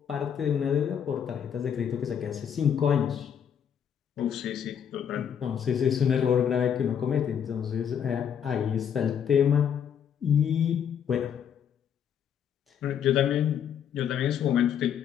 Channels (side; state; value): right; quieter; 8.4 dB